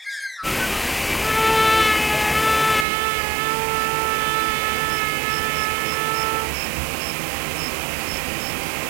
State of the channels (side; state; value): left; drops out; at 2.9 s